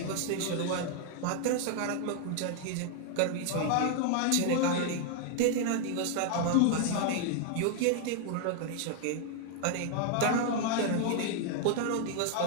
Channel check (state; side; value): different; both; correlation 0.00